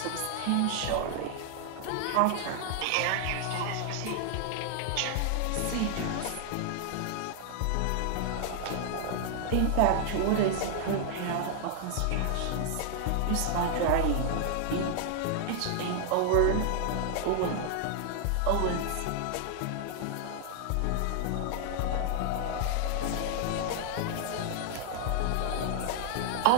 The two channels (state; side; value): different; both; correlation 0.00